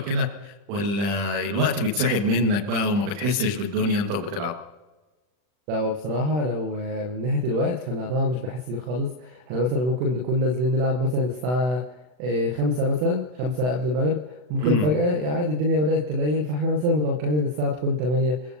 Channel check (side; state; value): left; late; 40 ms